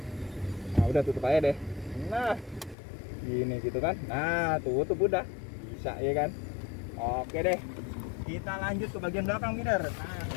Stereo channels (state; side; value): drops out; right; at 2.8 s